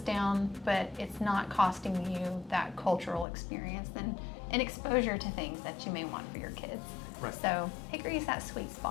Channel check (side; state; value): right; drops out; at 3.2 s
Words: down, but it's not costing you that cultural experience and exposure to things that you may want for your kids. Right. So Hickory is that sweet